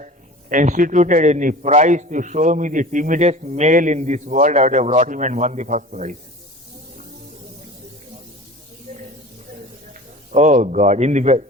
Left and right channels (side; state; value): both; normal; correlation 0.39